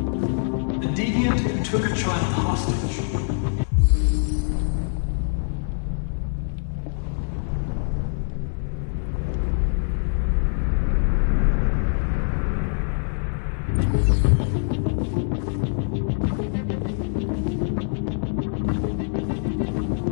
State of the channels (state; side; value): silent; right; 63 dB below the other